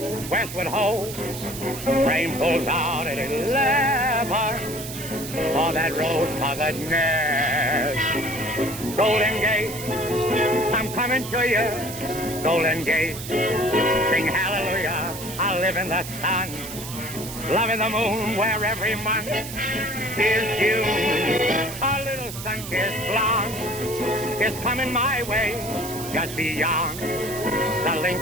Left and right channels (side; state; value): right; noise; hiss, 10 dB below the sound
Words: westward ho. Train pulls out at 11 for that rose-colored nest. Golden Gate, I'm coming to you. Golden Gate, sing hallelujah. I live in the sun, loving the moon where every month is June. A little sun-kissed blonde is coming my way, just beyond the